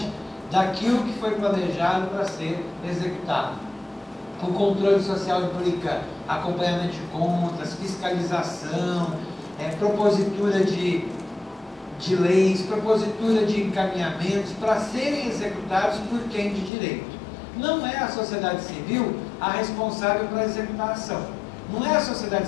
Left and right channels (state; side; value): drops out; right; at 16.7 s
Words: daquilo que foi planejado para ser executado. O controle social implica acompanhamento de contas, fiscalização, propositura de leis, propositura de encaminhamentos para serem executados por quem de direito. Não é a sociedade civil a responsável por executar a ação. Não é a